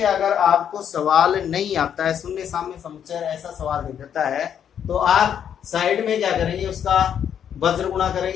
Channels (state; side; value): quieter; right; 8.8 dB